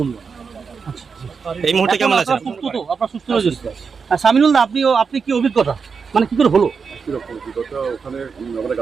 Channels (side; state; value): left; quieter; 5.6 dB